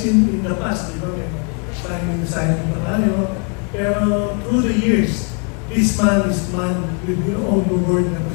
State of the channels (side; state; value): right; quieter; 38.8 dB